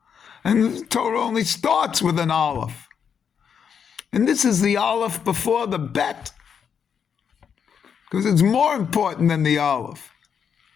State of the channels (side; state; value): right; quieter; 7.3 dB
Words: And the Torah only starts with an Aleph. And this is the Aleph before the Bet. Because it's more important than the Aleph,